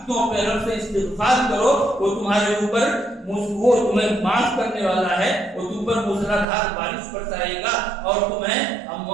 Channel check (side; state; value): left; drops out; at 6.5 s